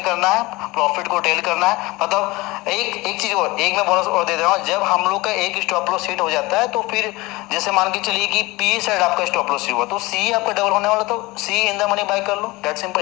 करना है, प्रॉफिट को टेल करना है। मतलब एक चीज और, एक मैं बोनस और दे रहा हूँ, जब हम लोग का एक स्टॉप लॉस हिट हो जाता है, तो फिर जैसे मान के चलिए कि पी साइड आपका स्टॉप लॉस हुआ, तो सी आपका डबल होने वाला, तो CE in the money buy कर लो, that simple.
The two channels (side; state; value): right; quieter; 21.9 dB